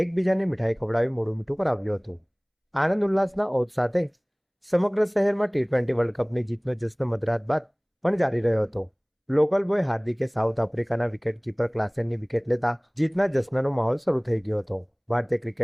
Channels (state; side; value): identical; both; correlation 1.00